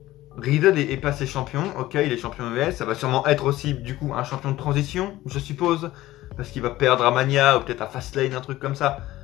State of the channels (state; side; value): quieter; right; 16.1 dB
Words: Riddle est passé champion. Ok, il est champion US. Ça va sûrement être aussi, du coup, un champion de transition, je suppose. Parce qu'il va perdre à Mania ou peut-être à Fastlane, un truc comme ça.